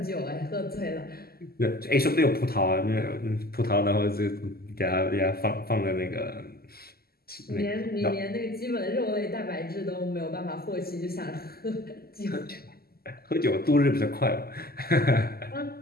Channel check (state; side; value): late; right; 0.45 ms